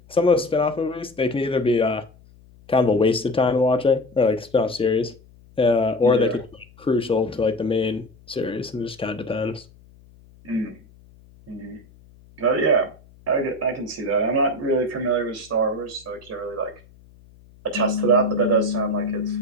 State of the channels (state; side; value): noise; left; hum, 26 dB below the sound